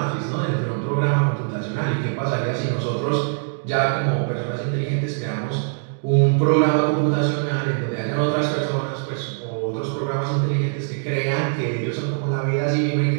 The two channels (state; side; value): silent; left; digital silence